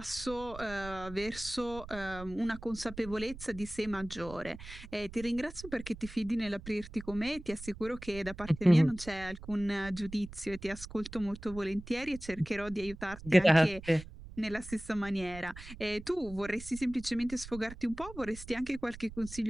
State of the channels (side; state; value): right; noise; rumble, 14 dB below the sound